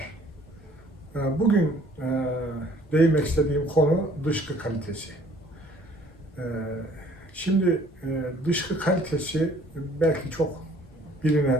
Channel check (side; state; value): both; normal; correlation 0.57